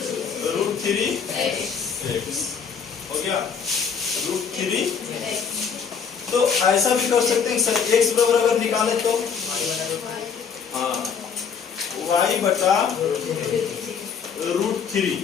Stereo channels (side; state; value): right; quieter; 6.6 dB